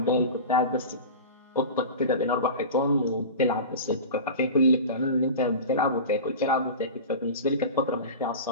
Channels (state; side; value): inverted; both; correlation -0.31